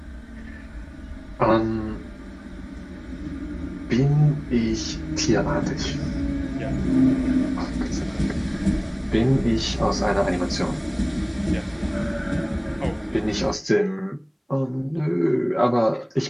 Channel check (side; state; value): both; identical; correlation 1.00